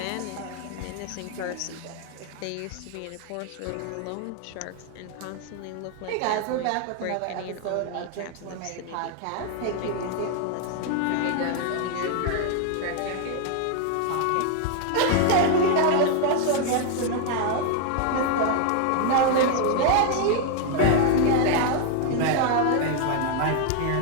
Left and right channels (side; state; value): both; different; correlation 0.00